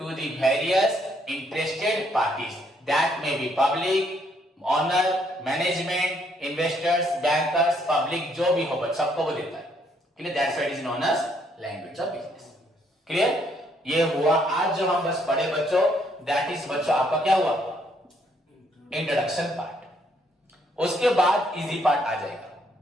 the various interested parties that may be public, owner, management, investors, bankers, public, जो भी हो बच्चों सबको वो देता है। Clear? That's why it is known as language of business। Clear? ये हुआ आज जो हम बस पढ़े बच्चों, that is बच्चों आपका क्या हुआ? Introduction part. उसके बाद इजी पार्ट आ जाएगा।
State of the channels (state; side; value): normal; both; correlation 0.70